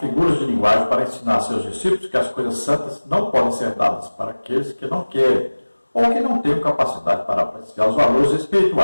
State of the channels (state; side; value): inverted; both; correlation -1.00